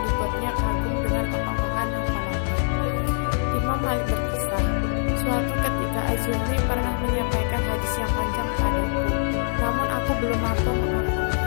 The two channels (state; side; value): silent; right; digital silence